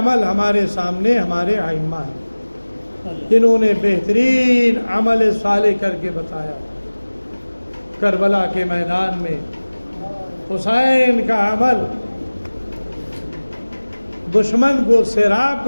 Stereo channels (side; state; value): both; inverted; correlation -1.00